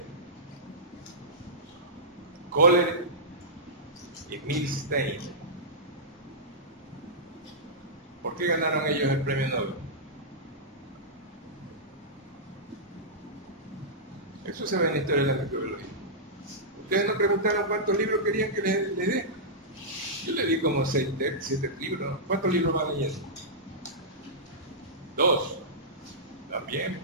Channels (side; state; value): both; normal; correlation -0.14